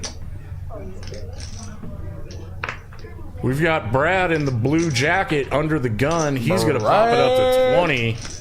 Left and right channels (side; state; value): both; identical; correlation 1.00